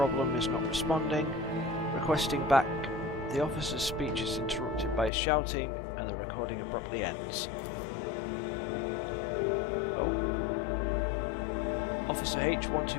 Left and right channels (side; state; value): right; drops out; at 5.1 s